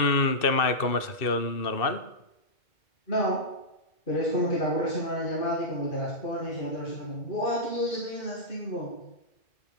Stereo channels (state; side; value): late; right; 2.6 ms